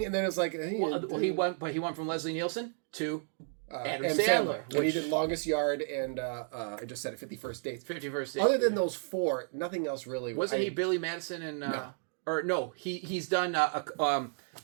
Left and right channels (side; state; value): left; silent; 56 dB below the other